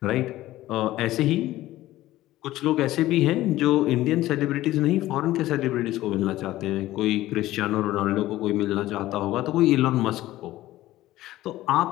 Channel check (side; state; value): right; quieter; 15.7 dB